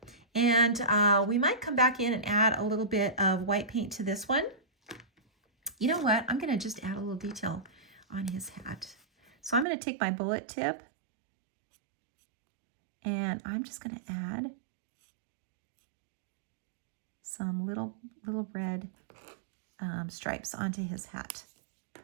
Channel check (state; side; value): drops out; left; at 9.7 s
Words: And we might come back in and add a little bit of white paint to this one. You know what? I'm going to just add a little detail on his hat. So I'm going to take my bullet tip and I'm just going to add some little red stripes onto his hat.